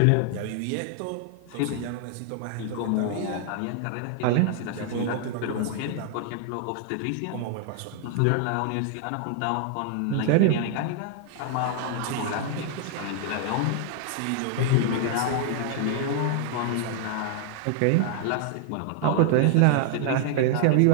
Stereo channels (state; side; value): different; both; correlation 0.00